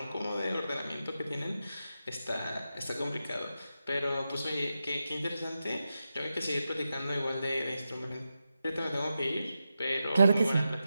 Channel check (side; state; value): both; inverted; correlation -0.89